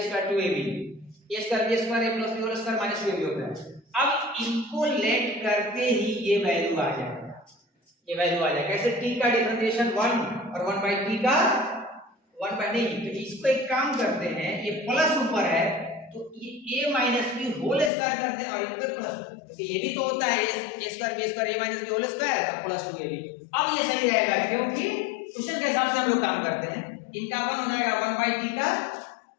square 2ab, a square b square a plus b whole square minus 2ab होता है। अब इनको लेट करते ही ये वैल्यू आ जाएगा, ये वैल्यू आ जाएगा। कैसे, t का डिफरेंशिएशन 1 और 1 बाई t का 1 बाई नहीं, तो इसको एक काम करते हैं, ये प्लस ऊपर है तो ये a minus b whole square करते हैं और इन पे प्लस, क्योंकि ये भी तो होता है a square b square a minus b whole square तो प्लस 2ab। अब ये सही रहेगा क्योंकि क्वेश्चन के हिसाब से हम लोग काम करते हैं। इनका 1 हो जाएगा 1 बाई टी का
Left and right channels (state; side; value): drops out; right; at 17.9 s